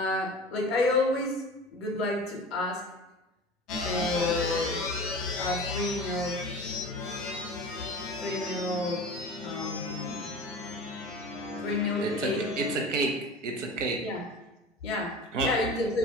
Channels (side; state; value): both; normal; correlation 0.36